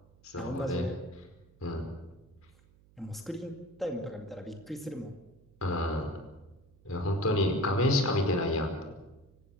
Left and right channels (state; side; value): noise; right; hum, 27 dB below the sound